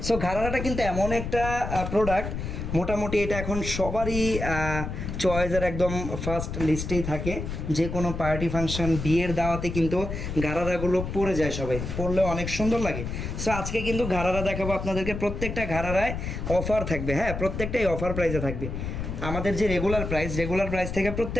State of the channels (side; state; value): left; noise; rumble, 5 dB below the sound